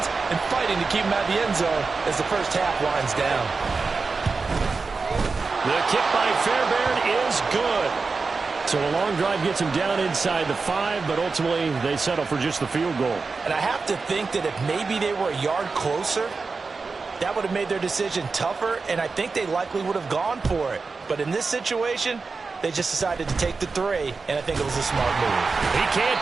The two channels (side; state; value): left; quieter; 4.4 dB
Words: and fighting to keep them out of the end zone as the first half winds down. The kick by Fairbairn is good. So a long drive gets him down inside the 5, but ultimately they settle for just the field goal. And I have to think that if maybe they were a yard closer, that would have made their decision tougher, and I think they likely would have gone for it. But in this situation, they just decided to take the 3, and I think it was a smart move. He can't